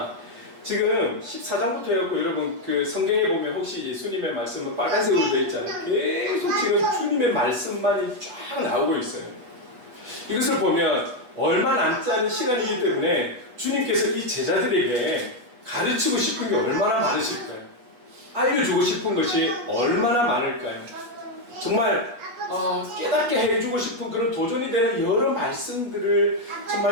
지금 14장부터 해갖고 여러분 그 성경에 보면 혹시 예수님의 말씀은 빨간색으로 되어 있잖아요. 계속 지금 주님의 말씀만이 쫙 나오고 있어요. 이것을 보면 얼마 남지 않은 시간이기 때문에 주님께서 이 제자들에게 가르치고 싶은 게 얼마나 많으실까요? 알려주고 싶은 것이 얼마나 많을까요? 정말 깨닫게 해주고 싶은 그런 도전이 되는 여러 말씀들을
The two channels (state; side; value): late; left; 8.2 ms